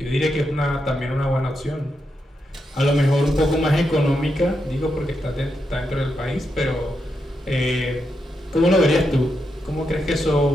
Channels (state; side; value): normal; both; correlation 0.84